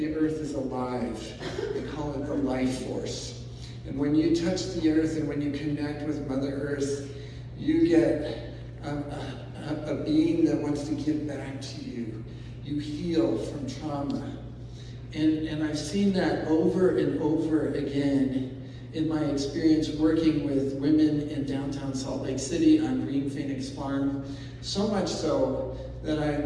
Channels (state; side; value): identical; both; correlation 1.00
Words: earth is alive. They call it the life force. And when you touch the earth and when you connect with Mother Earth, you get a being that wants to give back to you. You heal from trauma. And I've seen that over and over again in my experience working with women in downtown Salt Lake City on Green Phoenix Farm, so much so that